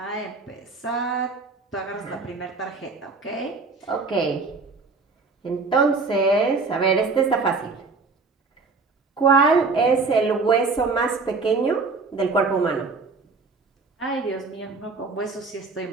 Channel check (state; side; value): quieter; left; 4.2 dB